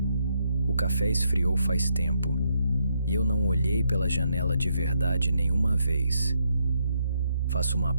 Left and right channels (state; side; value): inverted; both; correlation -0.77